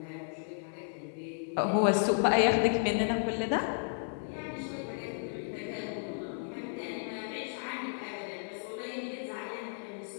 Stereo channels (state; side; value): silent; right; 56 dB below the other